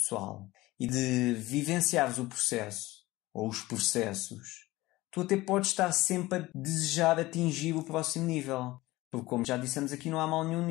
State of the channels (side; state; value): right; quieter; 19.0 dB